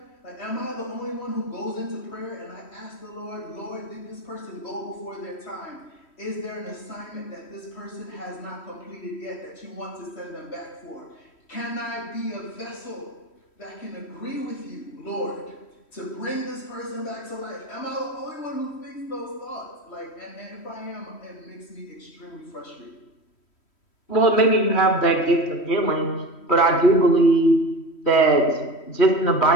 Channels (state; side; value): late; right; 3.1 ms